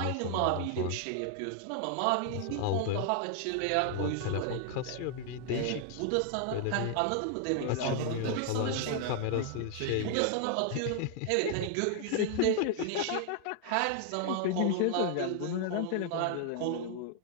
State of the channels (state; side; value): different; both; correlation 0.00